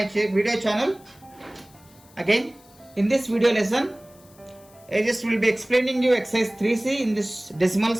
video channel. Again, in this video lesson, I just will be explaining you exercise 3C in this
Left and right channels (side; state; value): left; noise; hiss, 27 dB below the sound